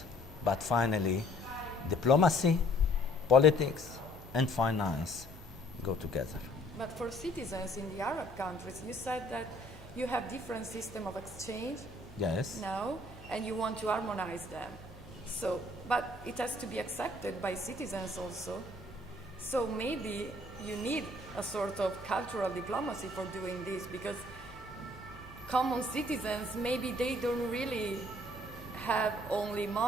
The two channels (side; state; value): both; normal; correlation 0.60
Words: but finally, diplomacy, politics, and finance go together. But for citizens in the Arab countries, you said that you have different system of exchange Yes. now, and you want to harmonize them. So, but it has to be accepted by citizens also. So maybe you need a sort of cultural diplomacy for doing this, because common citizens, maybe they don't really have only